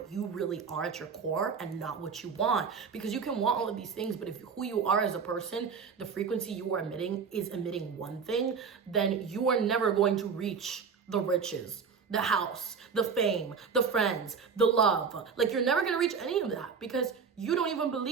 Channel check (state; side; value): quieter; left; 5.9 dB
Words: you really are at your core and not what you want. Because you can want all of these things, but if who you are as a person, the frequency you are emitting is emitting one thing, then you are never going to reach the riches, the house, the fame, the friends, the love. Like, you're never gonna reach any of that because you don't even